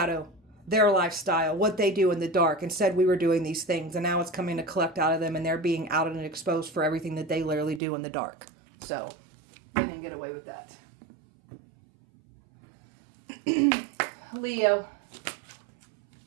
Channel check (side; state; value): left; drops out; at 7.8 s